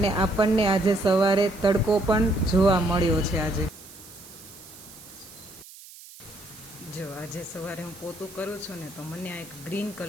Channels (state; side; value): noise; right; hiss, 18 dB below the sound